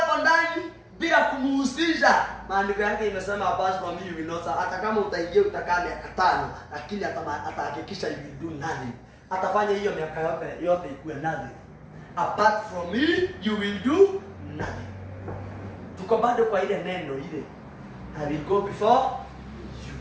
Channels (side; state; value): both; identical; correlation 1.00